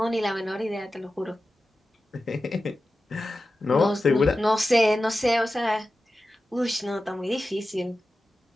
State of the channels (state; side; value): normal; both; correlation 0.93